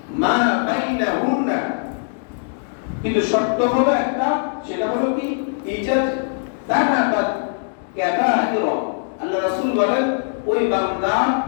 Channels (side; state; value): right; silent; digital silence